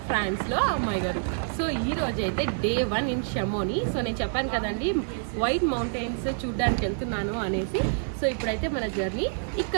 ఫ్రాన్స్లో అమ్మాయి గారు. సో ఈ రోజు అయితే డే 1 ఇన్ షమోని. సో నేను చెప్పాను కదండి వైట్ మౌంటైన్స్ చూడడానికి వెళ్తున్నాను అనేసి. సో ఇప్పుడైతే మన జర్నీ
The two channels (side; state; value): left; silent; digital silence